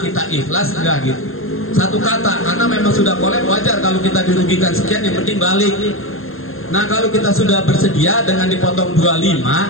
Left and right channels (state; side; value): late; right; 0.60 ms